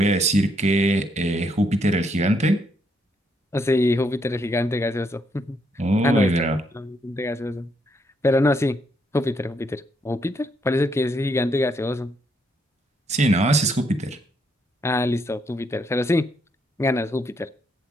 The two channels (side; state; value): both; normal; correlation 0.74